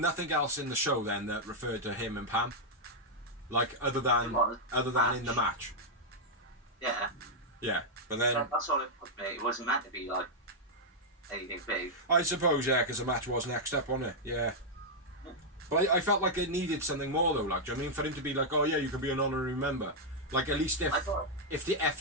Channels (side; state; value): both; normal; correlation -0.03